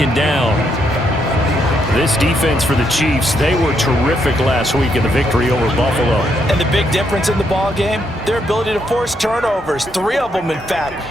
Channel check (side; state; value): both; normal; correlation 0.76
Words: down. This defense for the Chiefs, they were terrific last week in the victory over Buffalo. And the big difference in the ball game, their ability to force turnovers, 3 of them in fact.